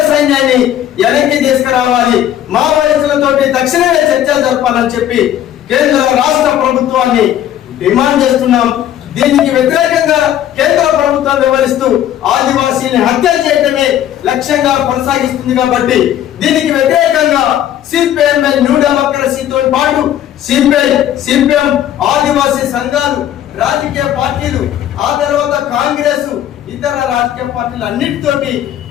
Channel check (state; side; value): quieter; right; 11.3 dB